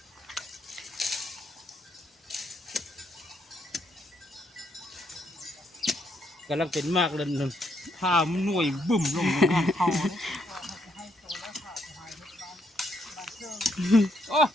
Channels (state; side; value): normal; both; correlation 0.74